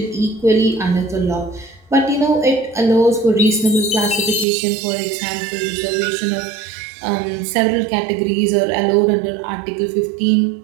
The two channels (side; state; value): left; drops out; at 4.5 s